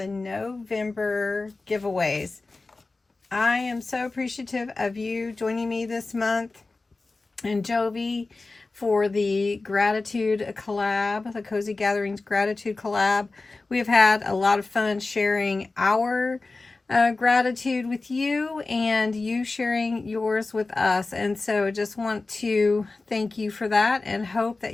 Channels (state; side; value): quieter; right; 3.5 dB